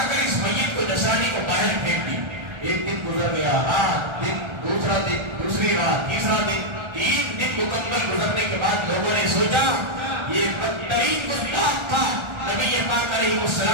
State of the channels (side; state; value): left; late; 1.3 ms